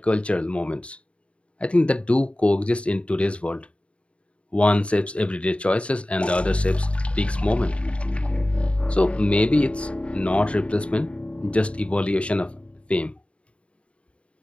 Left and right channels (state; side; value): late; right; 0.060 ms